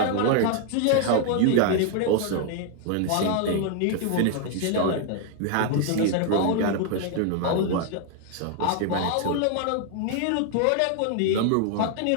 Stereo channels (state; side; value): different; both; correlation 0.00